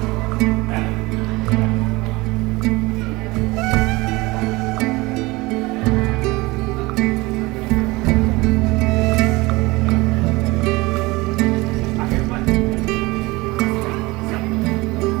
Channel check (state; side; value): quieter; left; 22.2 dB